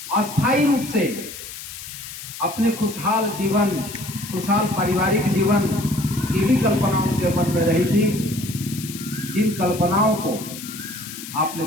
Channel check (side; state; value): left; noise; hiss, 11 dB below the sound